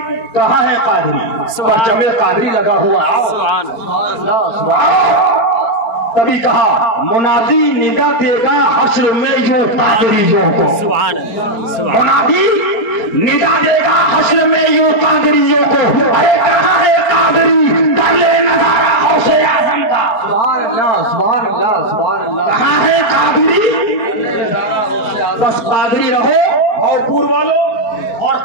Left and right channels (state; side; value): late; right; 4.3 ms